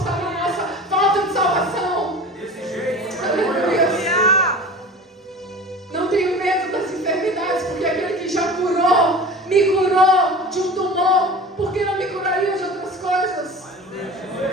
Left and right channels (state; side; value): normal; both; correlation 0.37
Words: na nossa falta de salvação. Aleluia. Não tenho medo das enfermidades, porque aquele que já curou, me curou de um tumor. Por que não me curaria de outras coisas?